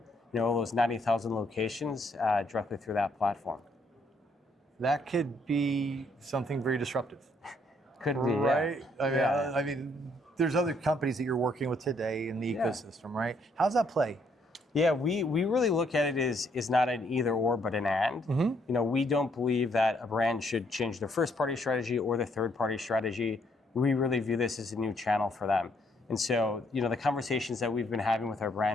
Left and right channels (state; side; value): normal; both; correlation 0.70